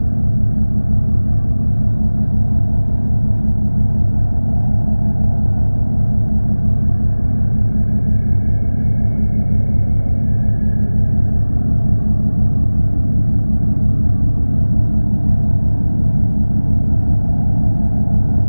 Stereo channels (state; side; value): inverted; both; correlation -1.00